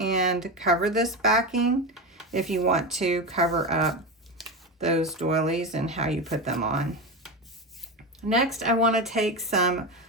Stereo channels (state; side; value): normal; both; correlation 0.19